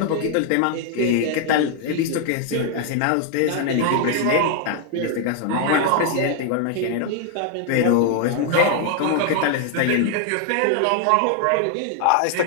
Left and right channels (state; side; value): different; both; correlation 0.00